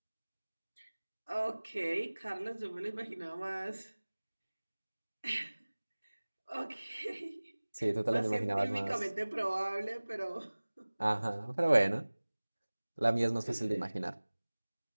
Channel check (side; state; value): both; inverted; correlation -1.00